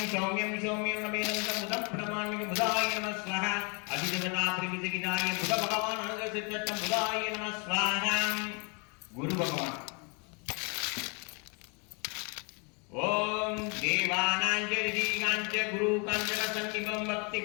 சௌமியம் சௌமியம் உடவேதம் தம் முதம் பிரணமாமிகு புதாய நம ஸ்வாஹா. அபிஜகதா பிரகிதகிதாய புத பகவான் அனுகிரசித்தம் புதாய நம ஸ்வாஹா. குரு பகவான் ஓம் தேவானாஞ்ச குரு காஞ்சன சன்னிபம் பக்தி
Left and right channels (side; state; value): right; quieter; 34.3 dB